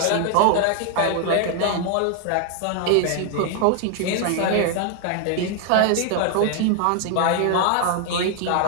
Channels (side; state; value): both; different; correlation 0.00